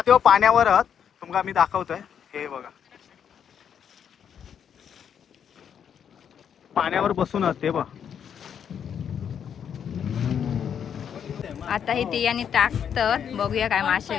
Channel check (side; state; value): right; quieter; 8.2 dB